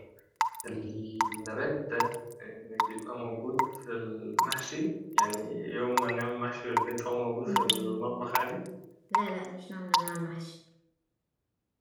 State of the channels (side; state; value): both; identical; correlation 1.00